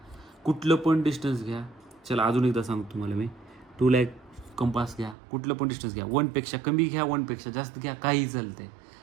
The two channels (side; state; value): left; drops out; at 5.2 s